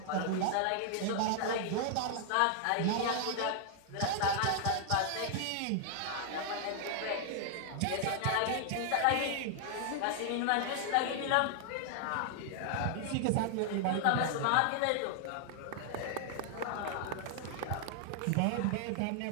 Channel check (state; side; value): different; both; correlation 0.00